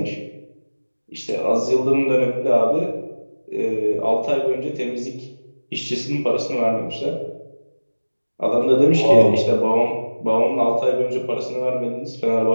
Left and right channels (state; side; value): inverted; both; correlation -1.00